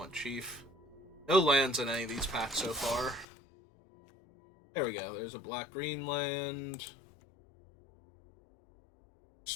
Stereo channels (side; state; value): right; drops out; at 3.2 s